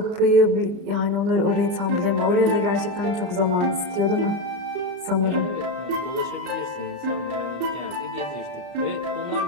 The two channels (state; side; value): late; left; 34 ms